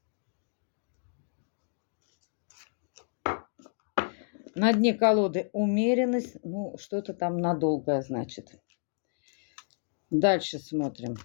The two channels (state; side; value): silent; right; digital silence